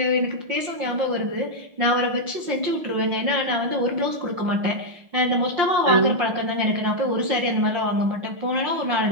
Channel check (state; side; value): late; left; 5.7 ms